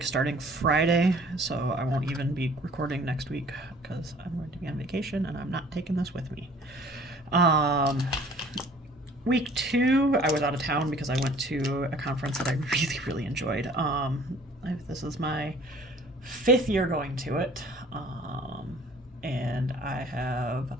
starting Friday, so I won't even be recording next week because I'm going to be on vacation and I'm not taking this with me. Um, Week 2, I was out of town because I went to a conference that I really, really enjoyed. This is my 5th year going to it, and I have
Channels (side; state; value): both; normal; correlation 0.52